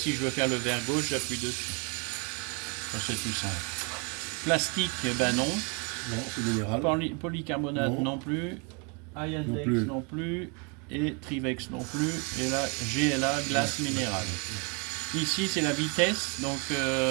je veux faire le verre gauche, j'appuie dessus. Ça, c'est tout simple. Plastique, ben non. Non, c'est minéral. Polycarbonate non plus. Iandex non plus. Et Trivex non plus. Et là, GLA, glace minérale. Ici, c'est la vitesse. Donc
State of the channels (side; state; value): left; quieter; 33.7 dB